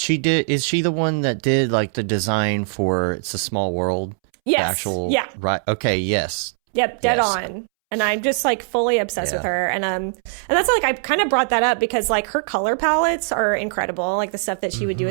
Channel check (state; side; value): silent; left; 65 dB below the other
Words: did. Is she the one that did like the design for It's a Small World? Yes. Right. Okay. Yes. Yep. Dead on. And I'm just like fully obsessed with her. And that's like, I kind of brought that up because like her color palettes are incredible. Like the stuff that she would do